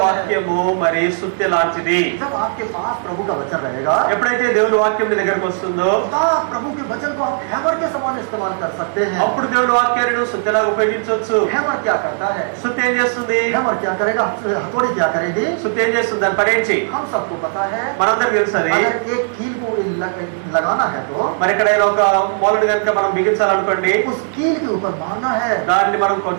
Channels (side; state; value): left; silent; digital silence